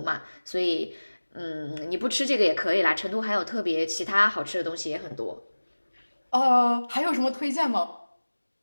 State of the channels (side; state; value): both; inverted; correlation -1.00